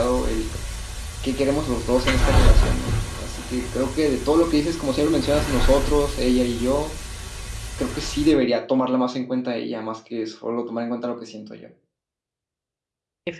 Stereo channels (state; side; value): identical; both; correlation 1.00